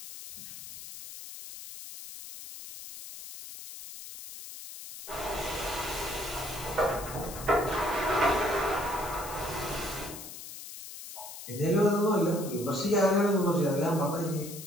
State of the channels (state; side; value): noise; left; hiss, 12 dB below the sound